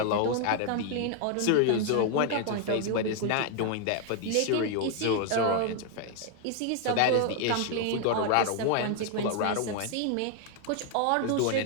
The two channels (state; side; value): different; both; correlation 0.00